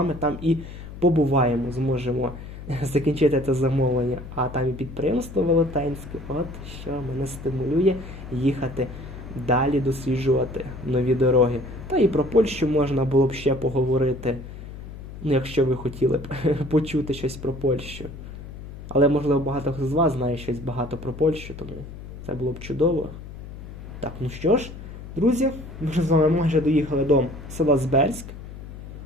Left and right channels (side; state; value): left; noise; hum, 12 dB below the sound